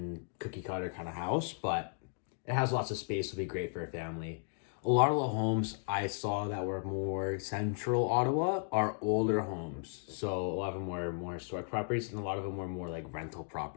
cookie cutter kind of house, but it has lots of space. It'll be great for a family. A lot of the homes I saw that were more central Ottawa are older homes. So a lot of them were more historic properties and a lot of them were more like rental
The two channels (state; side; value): silent; right; 54 dB below the other